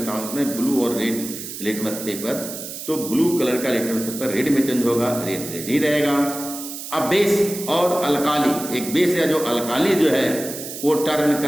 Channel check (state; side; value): noise; right; hiss, 9 dB below the sound